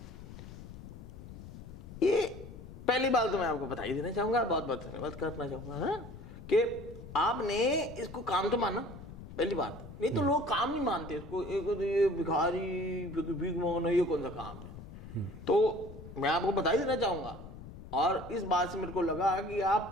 ये पहली बात तो मैं आपको बधाई देना चाहूंगा, बहुत बहुत धन्यवाद करना चाहूंगा कि आपने इसको काम तो माना, पहली बात। नहीं तो लोग काम नहीं मानते इसको, ये भिखारी भीख मांगना ये कौन सा काम है। तो मैं आपको बधाई देना चाहूंगा, और इस बात से मेरे को लगा कि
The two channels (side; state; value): left; noise; rumble, 14 dB below the sound